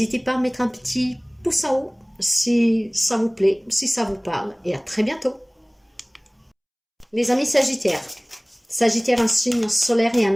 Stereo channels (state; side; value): identical; both; correlation 1.00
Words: pas à mettre un petit pouce en haut si ça vous plaît, si ça vous parle. Et à très bientôt. Les amis Sagittaires, Sagittaire, un signe solaire et